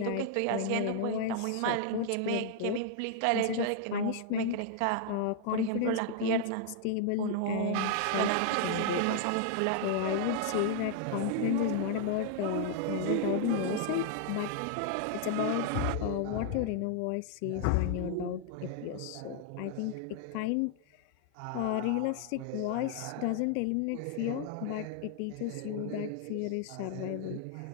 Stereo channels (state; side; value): different; both; correlation -0.01